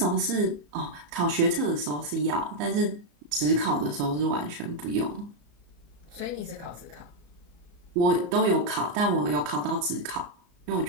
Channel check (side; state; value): left; late; 34 ms